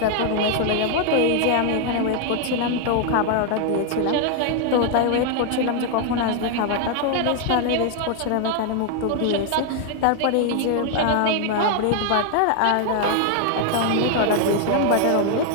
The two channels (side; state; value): both; different; correlation 0.00